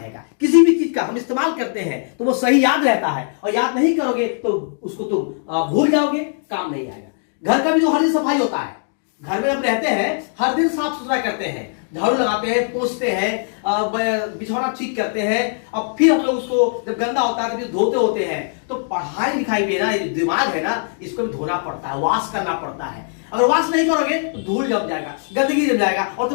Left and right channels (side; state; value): right; silent; digital silence